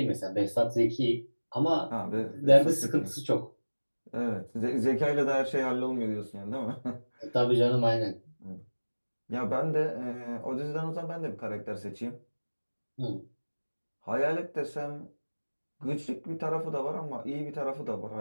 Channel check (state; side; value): inverted; both; correlation -1.00